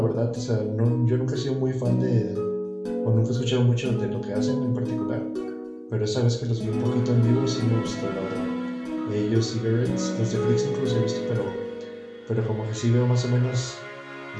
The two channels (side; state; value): both; identical; correlation 1.00